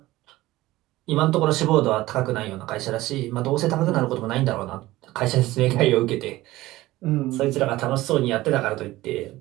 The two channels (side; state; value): left; quieter; 17.5 dB